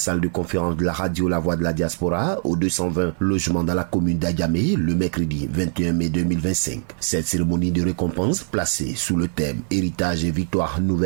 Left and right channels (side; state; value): left; silent; 64 dB below the other